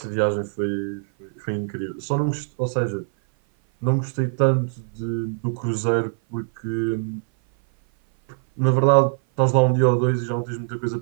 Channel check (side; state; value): left; silent; 57 dB below the other